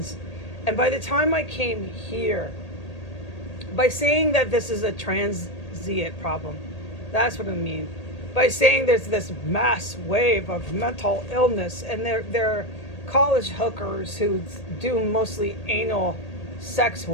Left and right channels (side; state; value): right; late; 1.8 ms